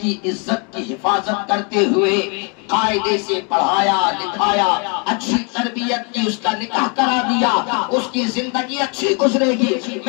عزت کی حفاظت کرتے ہوئے قاعدے سے پڑھایا لکھایا، اچھی تربیت کی، اس کا نکاح کرا دیا، اس کی زندگی اچھی گزرے گی،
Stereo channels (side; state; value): right; quieter; 34.8 dB